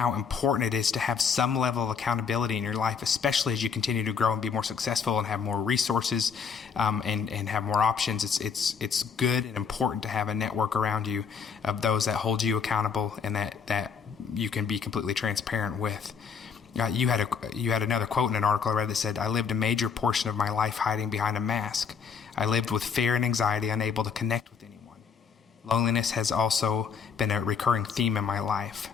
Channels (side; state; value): right; quieter; 6.4 dB